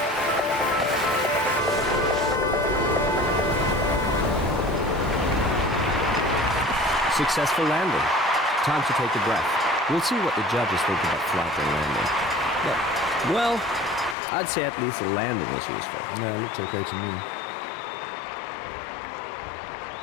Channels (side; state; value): right; drops out; at 14.2 s